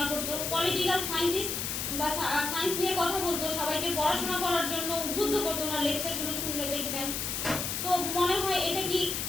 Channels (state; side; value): noise; left; hiss, 2 dB below the sound